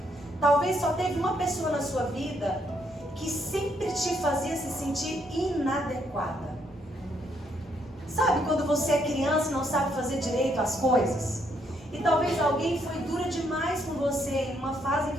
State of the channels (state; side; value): normal; both; correlation 0.73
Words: Talvez só teve uma pessoa na sua vida que sempre te fazia se sentir inadequada. Sabe quando você é criança e não sabe fazer direito as coisas? E talvez alguém foi dura demais com você em uma fase em